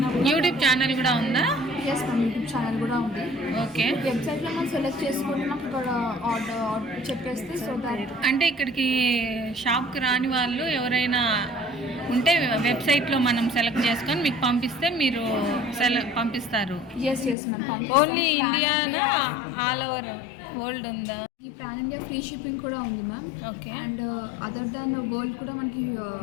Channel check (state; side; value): drops out; right; at 17.4 s